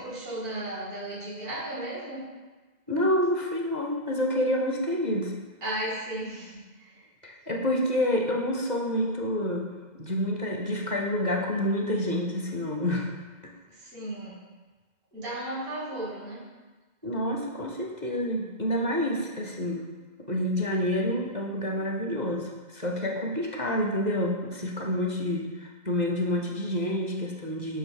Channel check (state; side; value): late; left; 2.0 ms